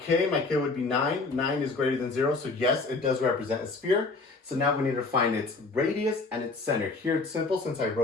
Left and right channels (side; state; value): right; quieter; 3.7 dB